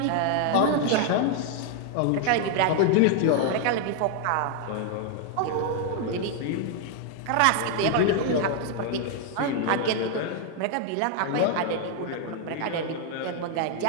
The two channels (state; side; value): different; both; correlation 0.00